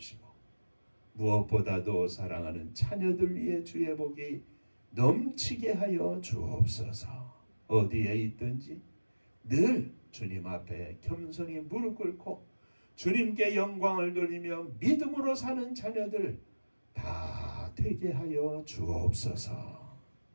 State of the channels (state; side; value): inverted; both; correlation -1.00